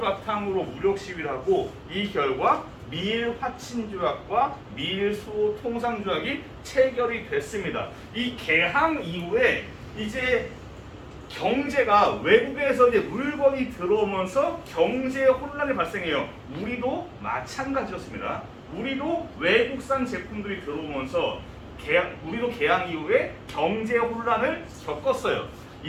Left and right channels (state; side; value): identical; both; correlation 1.00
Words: 바탕으로 무력 시위를 하고 이 결과 미일 화친 조약과 미일 수호 통상 조약이 체결이 됐습니다. 이 개항 이후에 이제 경제가 외국에서 이제 물건이 들어오면서 경제 혼란이 발생해요. 우리도 마찬가지였습니다. 우리도 외국산 제품들이 들어오면서 우리도 개항 이후에 경제 혼란을 겪었어요.